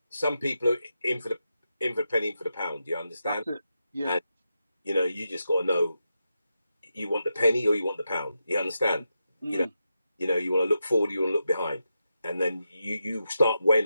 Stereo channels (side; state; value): both; inverted; correlation -0.87